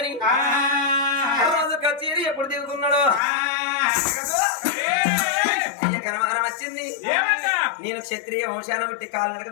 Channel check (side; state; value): right; drops out; at 3.2 s